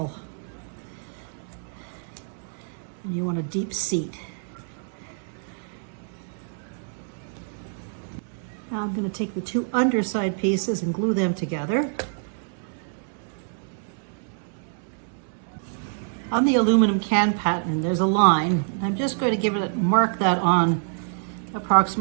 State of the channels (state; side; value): silent; left; 61 dB below the other